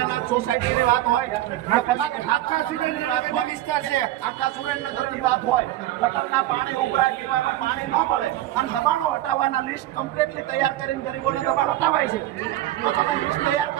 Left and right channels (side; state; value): left; quieter; 14.5 dB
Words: સોસાયટીની વાત હોય, આખા સુરેન્દ્રનગરની વાત હોય, વિસ્તાર છે આખા સુરેન્દ્રનગરની વાત હોય, ગટરના પાણી ઉભરાય, પીવાનું પાણી ન મળે અને દબાણો હટાવવાના લિસ્ટ કમ્પ્લીટલી તૈયાર કરીને ગરીબોને દબાણ હટાવાય છે। તો તમે લિસ્ટ તૈયાર